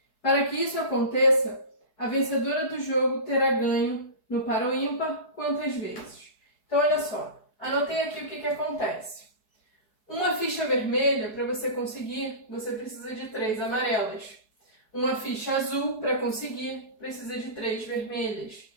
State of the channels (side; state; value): right; late; 4.7 ms